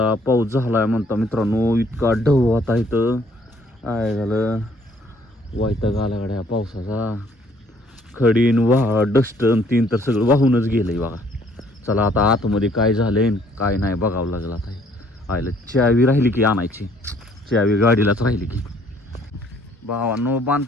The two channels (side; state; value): both; normal; correlation 0.62